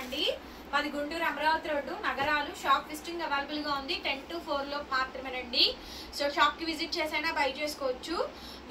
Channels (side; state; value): both; identical; correlation 1.00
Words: మాది గుంటూరు అమరావతి రోడ్డు నగరాలు. షాప్ విజిటింగ్ అవైలబుల్ గా ఉంది 10 to 4 లో మాత్రమేనండి. సో షాప్ కి విజిట్ చేసైనా బై చేసుకోవచ్చు.